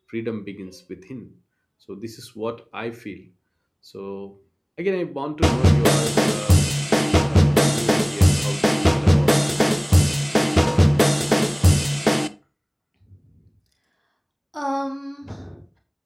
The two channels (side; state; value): both; identical; correlation 1.00